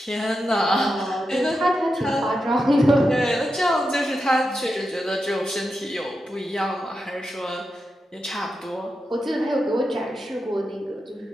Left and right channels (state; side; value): normal; both; correlation 0.88